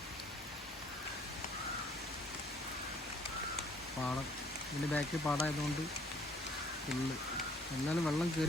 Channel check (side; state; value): both; normal; correlation 0.60